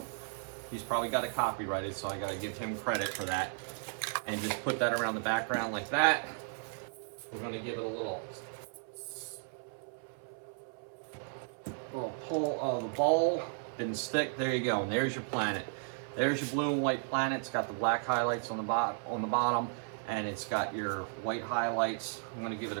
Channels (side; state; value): left; silent; 55 dB below the other